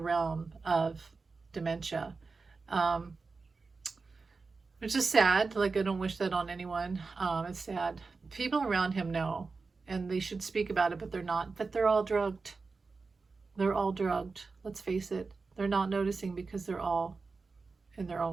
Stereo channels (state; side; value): quieter; left; 4.3 dB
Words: of dementia, which is sad. Like, I don't wish that on anyone. It's sad. People around him know, and they should speak about it, but they're not. But they're all drugged. They're all drugged. Let's face it. They're not noticing because they're all in their